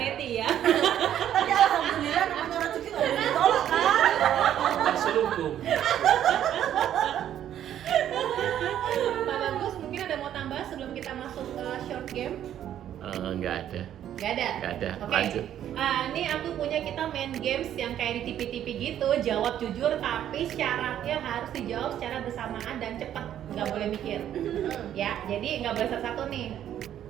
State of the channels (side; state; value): left; quieter; 10.8 dB